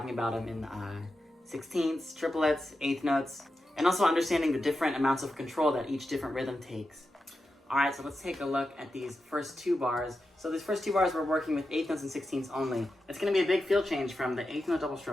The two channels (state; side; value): normal; both; correlation 0.90